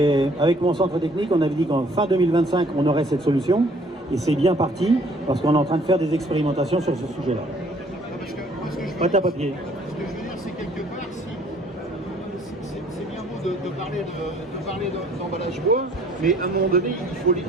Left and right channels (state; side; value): normal; both; correlation 0.60